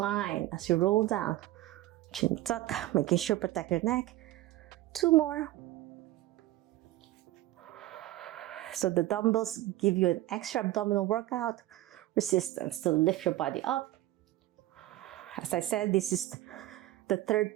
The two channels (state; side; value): quieter; left; 15.8 dB